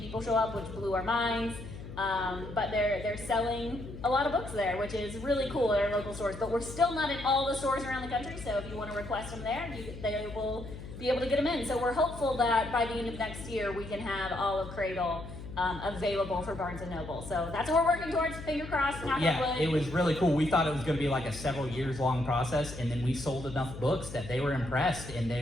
show up, which blew our minds. But they're selling a lot of books there, which is really cool at our local stores. But we're still not in all the stores around the country, so if you want to request them there, they will be able to get them in. So we're hopeful that by the end of next year, we can have all of Cradle available for Barnes & Noble. So that's what we're working towards. Finger crossed, knock on Yeah, wood. it was really cool. We thought it was going to be like a several years long process, and then we sold enough books that they were impressed, and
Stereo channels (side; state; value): left; noise; hum, 12 dB below the sound